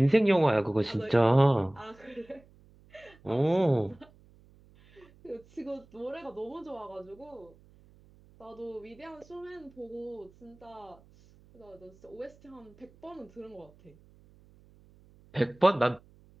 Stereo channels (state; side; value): noise; right; hum, 27 dB below the sound